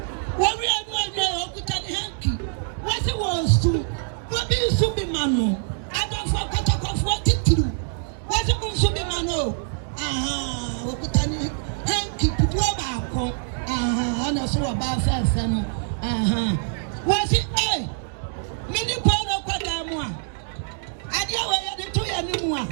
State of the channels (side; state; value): left; silent; 62 dB below the other